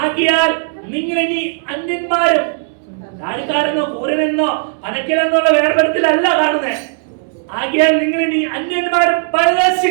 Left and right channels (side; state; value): left; silent; digital silence